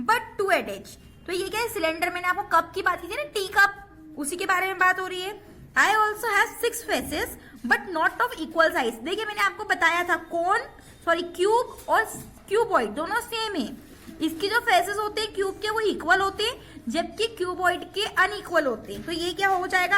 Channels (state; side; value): identical; both; correlation 1.00